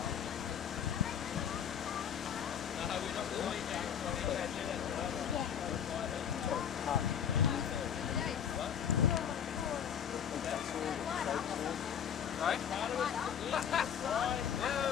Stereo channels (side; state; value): right; quieter; 8.5 dB